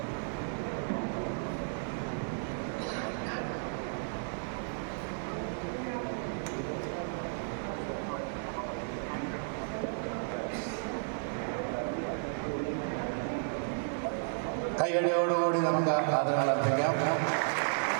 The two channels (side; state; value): left; silent; 55 dB below the other